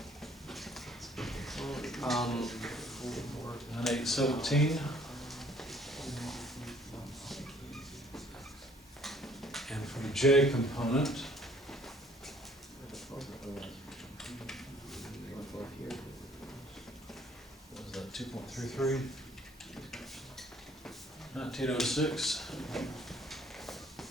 Um, 9817. And for the J component, what is that, 2.33? 1906.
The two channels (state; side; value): normal; both; correlation 0.59